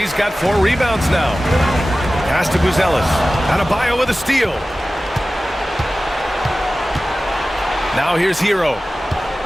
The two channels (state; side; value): normal; both; correlation 0.96